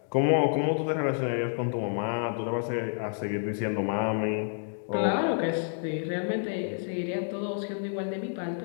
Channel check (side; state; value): right; silent; digital silence